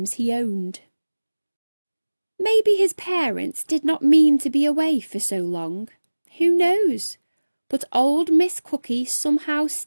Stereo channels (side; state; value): both; inverted; correlation -1.00